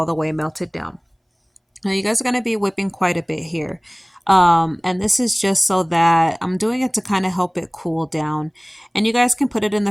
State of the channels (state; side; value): identical; both; correlation 1.00